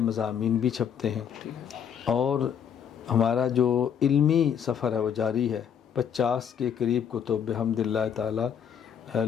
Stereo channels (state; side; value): quieter; right; 8.1 dB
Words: مضامین بھی چھپتے ہیں، اور ہمارا جو علمی سفر ہے وہ جاری ہے۔ 50 کے قریب کتب بحمد اللہ تعالیٰ